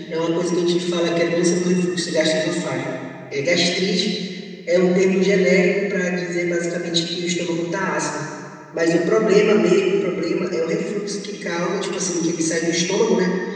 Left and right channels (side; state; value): both; identical; correlation 1.00